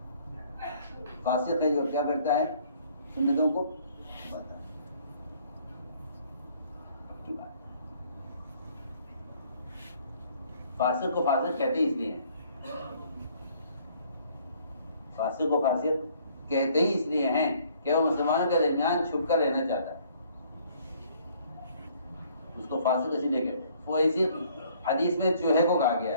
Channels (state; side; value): inverted; both; correlation -0.61